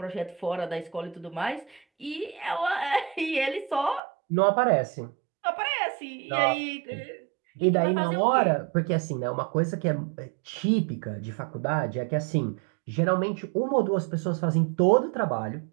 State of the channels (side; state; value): left; drops out; at 4.0 s